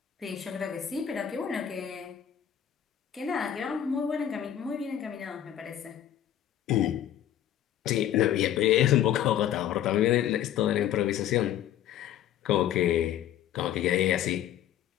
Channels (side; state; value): right; quieter; 10.9 dB